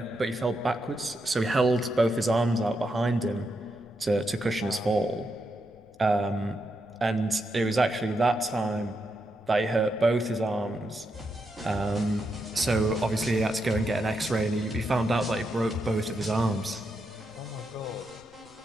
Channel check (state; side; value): noise; left; rumble, 28 dB below the sound